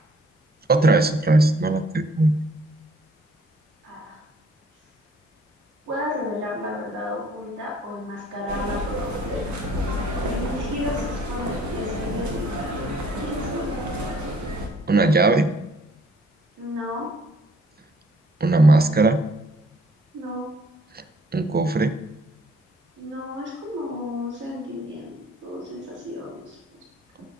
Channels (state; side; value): normal; both; correlation 0.61